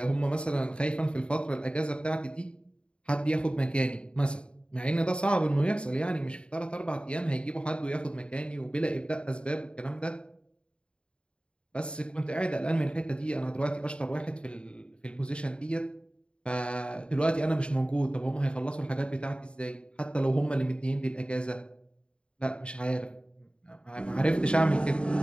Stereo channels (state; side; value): late; right; 0.055 ms